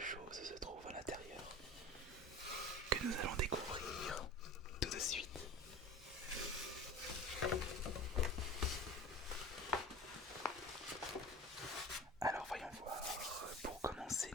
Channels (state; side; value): normal; both; correlation 0.36